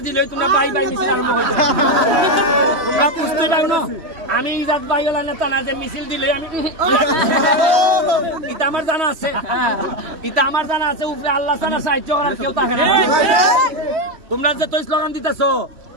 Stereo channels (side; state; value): left; late; 3.1 ms